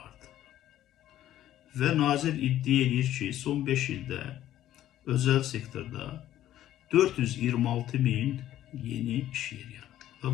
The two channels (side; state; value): right; quieter; 12.7 dB